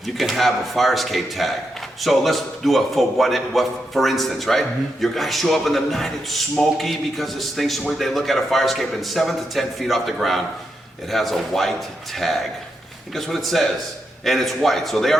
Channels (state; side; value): normal; both; correlation 0.84